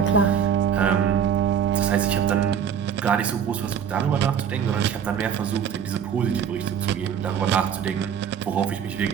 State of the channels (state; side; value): quieter; left; 8.0 dB